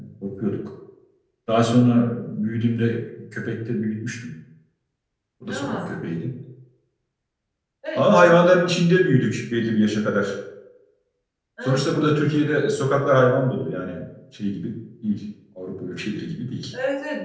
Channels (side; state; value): both; identical; correlation 1.00